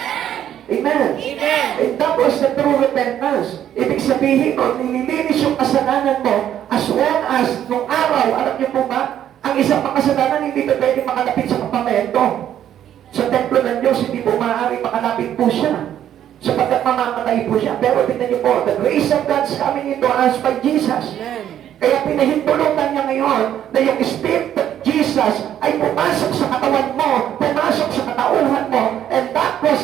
Amen. Amen. And that was the true repentance. Ibig sabihin mo, nililinis yung kasalanan mo as well as nung araw, alam niyo po ba, ang isang makasalanan hindi pa pwede makalapit sa kapamento. Sa templo ng Diyos, hindi po maaari makalapit po siya. Sapagkat mamamatay po siya. Pero tingnan niyo po, the grace of God's coming into us by Jesus. Amen. Kaya pinahintulutan niya ngayon na yung Spirit of Jesus ay pumasok sa katawan mo, pumasok sa katauhan mo, and that was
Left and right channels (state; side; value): quieter; left; 10.6 dB